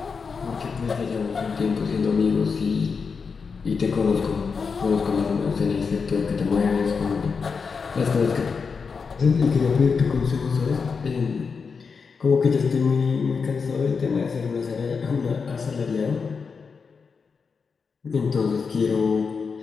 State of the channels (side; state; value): right; quieter; 5.4 dB